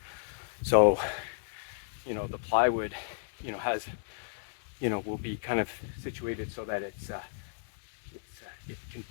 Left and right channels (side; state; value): right; silent; digital silence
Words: So, the plywood, has, will be kind of situated so that it can